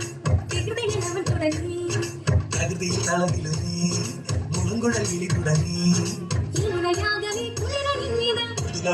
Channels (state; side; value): identical; both; correlation 1.00